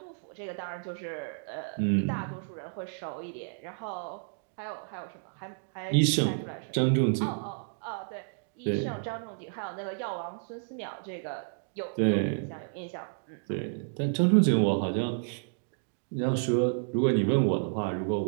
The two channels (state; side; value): silent; left; digital silence